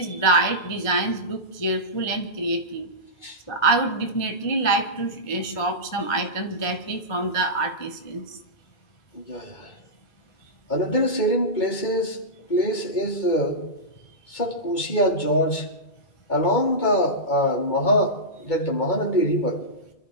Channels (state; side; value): late; right; 2.2 ms